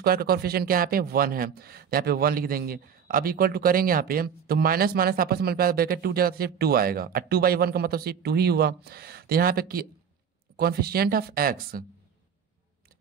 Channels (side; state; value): left; quieter; 7.4 dB